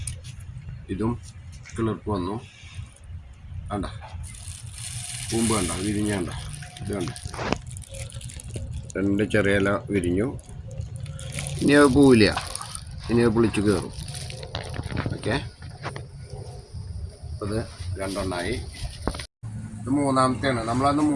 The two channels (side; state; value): both; identical; correlation 1.00